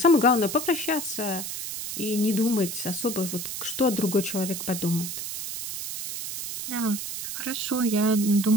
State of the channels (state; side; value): noise; right; hiss, 6 dB below the sound